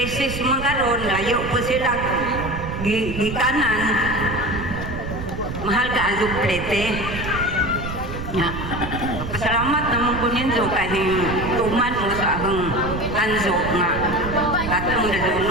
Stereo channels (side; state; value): right; noise; rumble, 7 dB below the sound